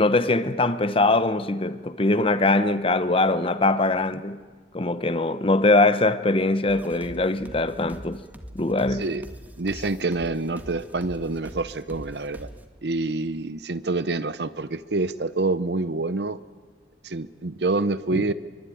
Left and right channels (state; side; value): normal; both; correlation 0.30